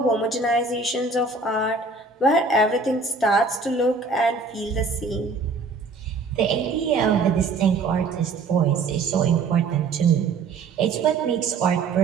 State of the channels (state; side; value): quieter; left; 4.1 dB